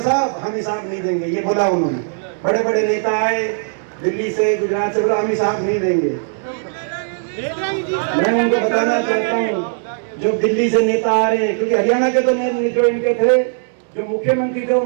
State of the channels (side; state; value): left; silent; 67 dB below the other